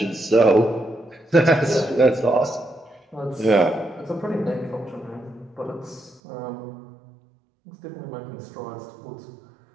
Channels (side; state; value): left; drops out; at 6.2 s